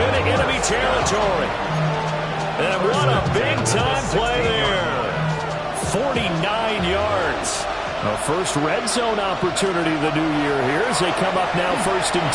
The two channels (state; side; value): identical; both; correlation 1.00